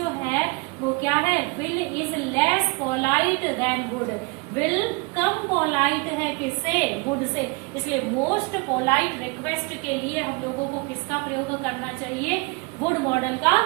है वो क्या है, will is less polite than would. Will कम पोलाइट है किससे, वुड से। इसलिए मोस्ट पोलाइट रिक्वेस्ट के लिए हम लोगों को किसका प्रयोग करना चाहिए, वुड मॉडल का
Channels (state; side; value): quieter; left; 28.0 dB